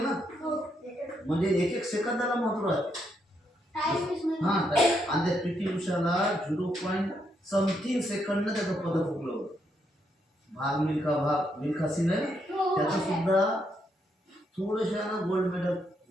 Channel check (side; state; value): both; normal; correlation 0.77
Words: ना. म्हणजे एक एक सेकंदाला महत्व राहते. हा, आणि त्या पीटी उषाला 0.something सेकंद त्याचं पदक हुकलं होतं. भाग मिल्खा सिंग आहे, त्याचं सुद्धा थोडंसं गोल्ड मेडल